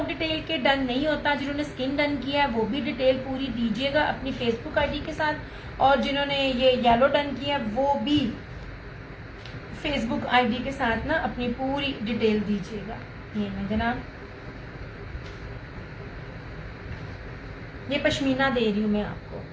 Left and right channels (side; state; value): both; identical; correlation 1.00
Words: डिटेल के डन नहीं होता। जिन्होंने स्किन डन किया है वो भी डिटेल पूरी दीजिएगा अपनी फेसबुक आईडी के साथ, और जिन्होंने ये येलो डन किया वो भी फेसबुक आईडी के साथ ना अपनी पूरी डिटेल दीजिएगा। ये मैं जनाब, ये पश्मीना दे रही हूँ मैं आपको,